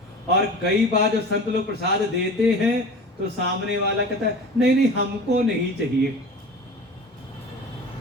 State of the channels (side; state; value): both; normal; correlation 0.36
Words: और कई बार जब संत लोग प्रसाद देते हैं तो सामने वाला कहता है नहीं नहीं हमको नहीं चाहिए।